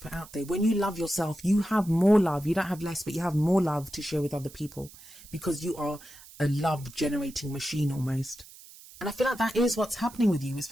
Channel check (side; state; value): right; noise; hiss, 20 dB below the sound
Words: out there. When you love yourself, you have more love. You don't have less, but you have more love to share with other people because you are a love generating machine almost. And I feel like that is what's happening with you,